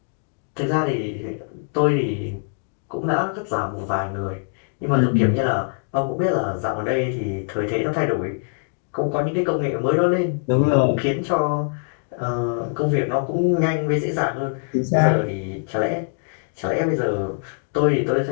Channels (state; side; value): silent; right; 63 dB below the other